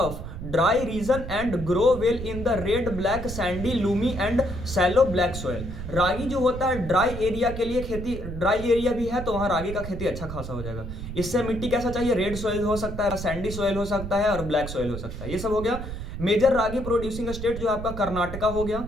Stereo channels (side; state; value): right; noise; rumble, 8 dB below the sound